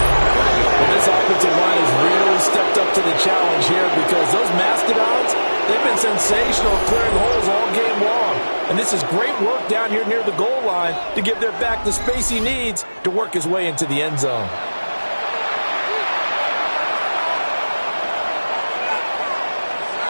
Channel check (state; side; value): inverted; both; correlation -1.00